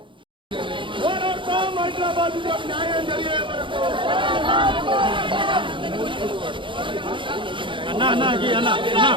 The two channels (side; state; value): left; late; 0.24 ms